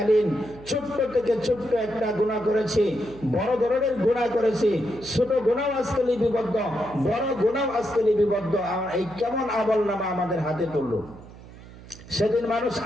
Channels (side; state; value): right; noise; hum, 18 dB below the sound